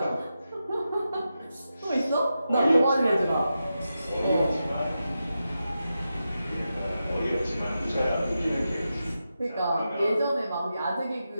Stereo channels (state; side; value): inverted; both; correlation -0.89